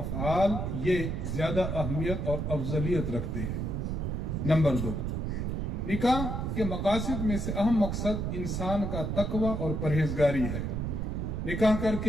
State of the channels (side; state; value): right; noise; rumble, 2 dB below the sound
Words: ये ज्यादा अहमियत और अफजलियत रखते हैं। नंबर दो, निकाह के मकासद में से अहम मकसद इंसान का तकवा और परहेजगारी है। निकाह